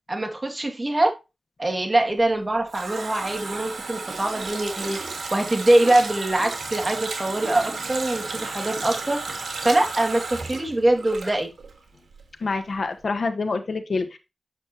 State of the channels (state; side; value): normal; both; correlation 0.97